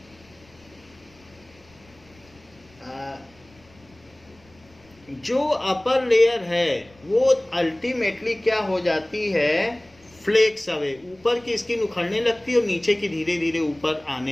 जो अपर लेयर है वो अल्टीमेटली क्या हो जाती है, फ्लेक्स अवे, ऊपर की स्किन उखड़ने लगती है और नीचे की धीरे धीरे ऊपर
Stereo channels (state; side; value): noise; left; rumble, 28 dB below the sound